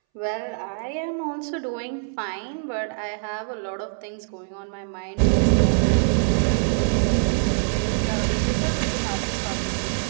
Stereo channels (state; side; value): silent; left; 63 dB below the other